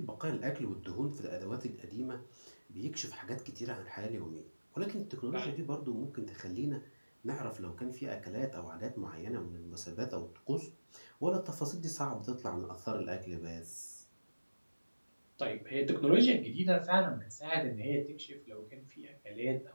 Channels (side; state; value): both; inverted; correlation -1.00